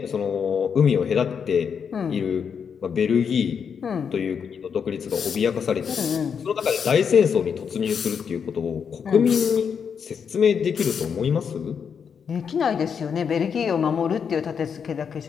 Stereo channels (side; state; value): right; quieter; 6.9 dB